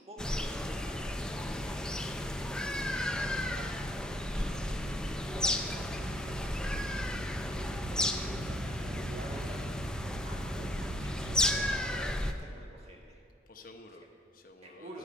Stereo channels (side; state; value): both; normal; correlation 0.68